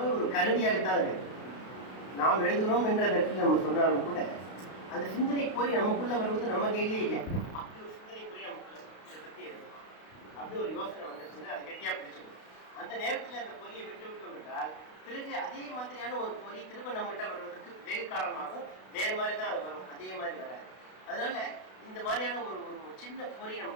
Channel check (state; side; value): late; right; 32 ms